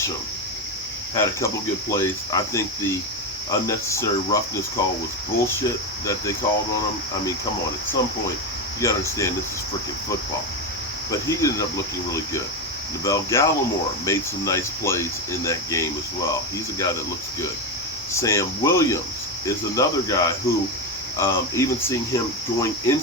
had a couple good plays. I think the unnecessary roughness call was bullshit that they called on him. I mean, come on, at some point, you gotta understand this is freaking football. But he ended up looking really good. Neville Gallimore made some nice plays in that game as well. He's a guy that looks good. Sam Williams is another guy who, even seeing him going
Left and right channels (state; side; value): normal; both; correlation 0.12